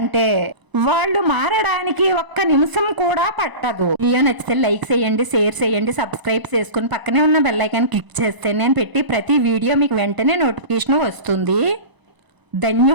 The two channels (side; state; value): left; late; 1.0 ms